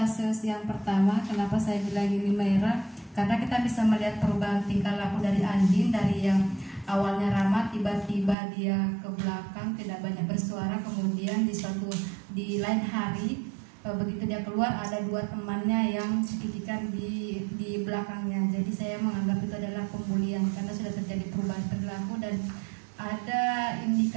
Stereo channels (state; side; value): drops out; left; at 8.3 s